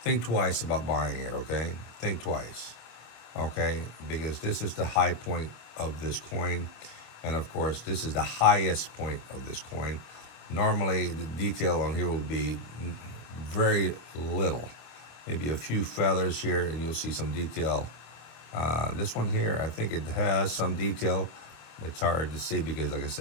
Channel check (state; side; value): late; right; 26 ms